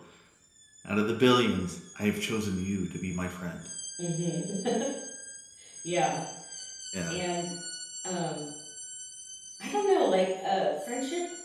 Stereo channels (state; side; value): identical; both; correlation 1.00